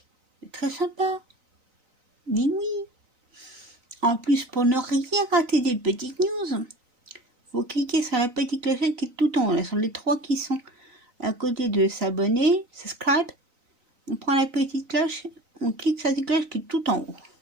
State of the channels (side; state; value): left; late; 3.9 ms